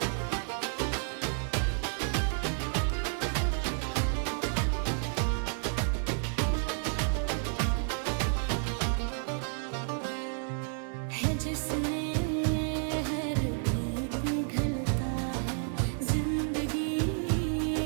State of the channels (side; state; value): left; silent; 57 dB below the other